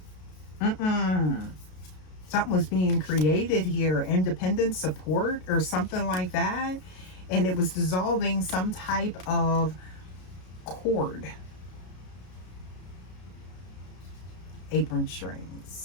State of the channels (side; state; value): right; late; 33 ms